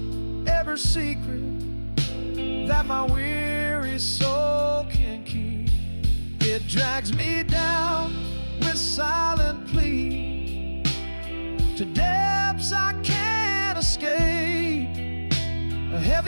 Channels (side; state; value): both; inverted; correlation -1.00